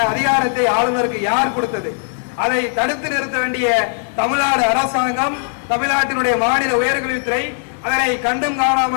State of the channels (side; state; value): right; silent; digital silence